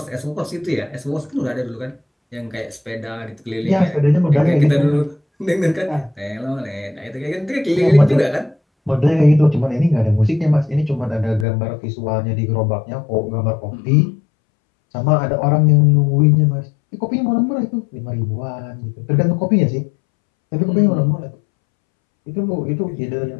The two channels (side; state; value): right; drops out; at 11.5 s